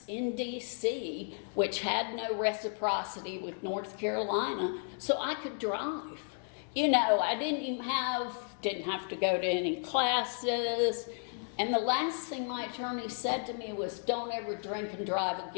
in D.C., which had no reciprocity with North Carolina, so I could drive. You know, I didn't have to go to any classes. And the last thing my attorney said to me was, don't ever drink and drive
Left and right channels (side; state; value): right; silent; 56 dB below the other